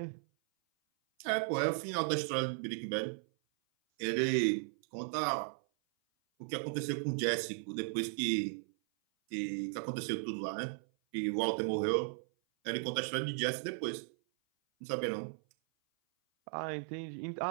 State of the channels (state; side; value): silent; left; 54 dB below the other